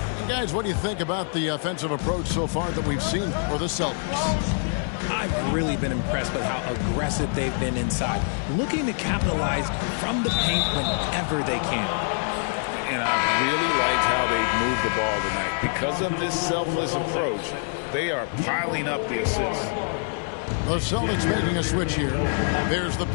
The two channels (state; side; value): silent; right; 62 dB below the other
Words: And guys, what do you think about the offensive approach so far that we've seen for the Celtics? I've really been impressed with how aggressive they've been inside, looking to capitalize from the paint whenever they can. And I really liked how they've moved the ball tonight. Because of this selfless approach, they are piling up the assists. The Celtics making a switch here. There's the